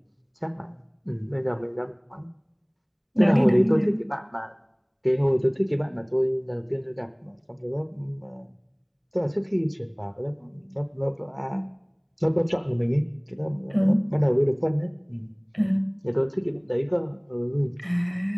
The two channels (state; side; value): identical; both; correlation 1.00